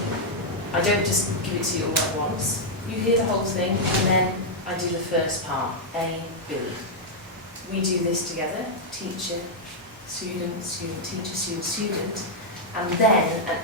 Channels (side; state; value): both; normal; correlation -0.04